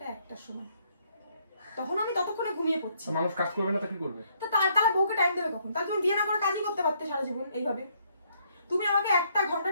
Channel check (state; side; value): inverted; both; correlation -0.70